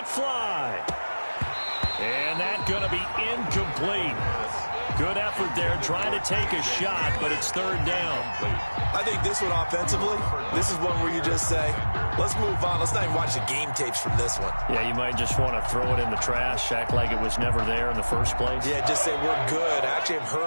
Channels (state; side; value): inverted; both; correlation -1.00